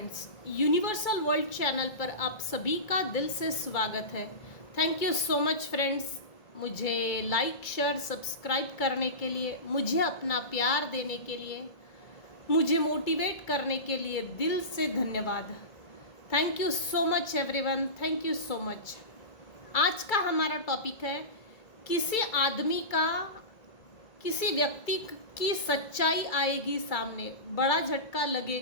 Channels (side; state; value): right; late; 2.3 ms